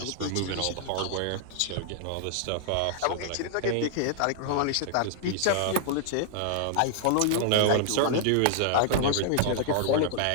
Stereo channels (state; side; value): different; both; correlation -0.01